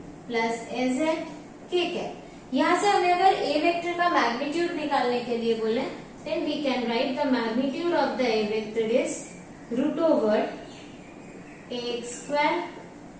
plus az k cap. यहाँ से हमें अगर a वेक्टर का मैग्नीट्यूड निकालने के लिए बोले then we can write the magnitude of the a vector is root over ax square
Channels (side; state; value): both; identical; correlation 1.00